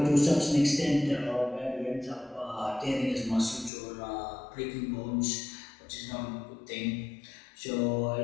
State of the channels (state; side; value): drops out; right; at 3.7 s